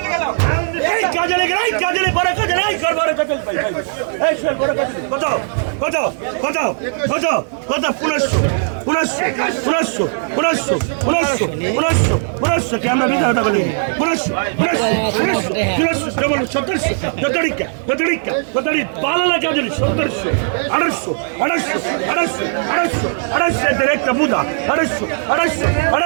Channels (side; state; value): left; silent; digital silence